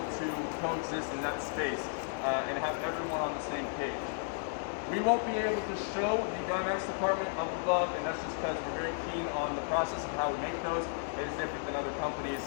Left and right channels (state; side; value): silent; right; digital silence